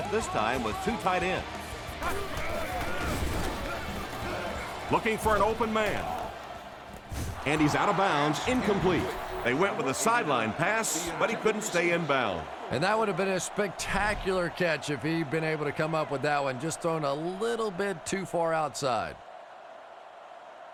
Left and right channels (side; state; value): both; identical; correlation 1.00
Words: this time with 2 tight ends. Looking for an open man. And he's out of bounds, incomplete. They went with a sideline pass, but he couldn't stay in bounds. And that would have been a spectacular catch if he'd been able to come up with that one, just thrown a little bit too far outside.